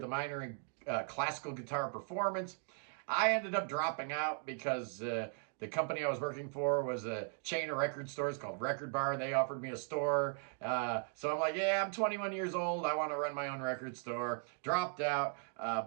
a minor in classical guitar performance. I ended up dropping out because the company I was working for was a chain of record stores called Record Bar. They offered me a store. So I'm like, yeah, I'm 21 years old. I want to run my own record store. Dropped out.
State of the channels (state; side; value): silent; left; 53 dB below the other